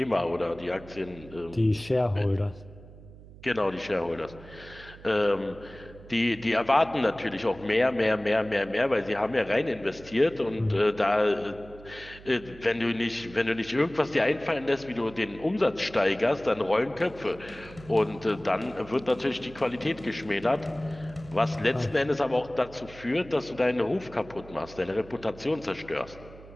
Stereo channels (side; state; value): right; noise; hum, 19 dB below the sound